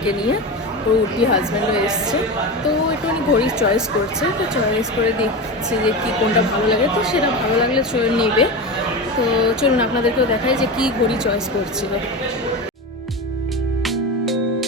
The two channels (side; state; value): both; normal; correlation 0.23